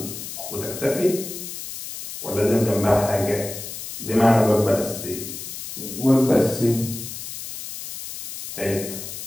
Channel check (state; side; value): noise; left; hiss, 9 dB below the sound